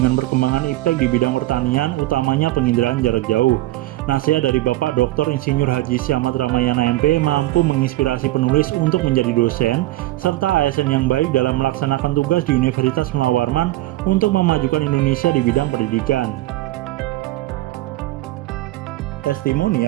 perkembangan iptek di bidang pertanian, utamanya penginderaan jarak jauh. Nasihat dari Bapak Dr. Insinyur Haji Siamat Ramayana MP mampu menginspirasi penulis untuk menjadi dosen serta ASN yang baik dalam melaksanakan tugas di Universitas Mula Warman untuk memajukan Indonesia di bidang pendidikan.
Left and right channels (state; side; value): quieter; left; 17.1 dB